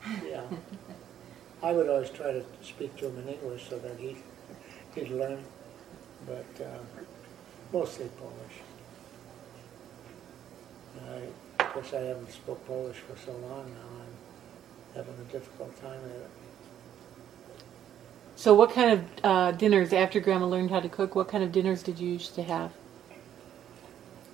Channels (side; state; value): left; quieter; 10.3 dB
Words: Yeah. I would always try to speak to him in English so that he'd learn, but mostly Polish. Of course, I haven't spoke Polish for so long now. I'm having a difficult time at it. So what kind of dinners, after Grandma learned how to cook, what kind of dinners did you used to have?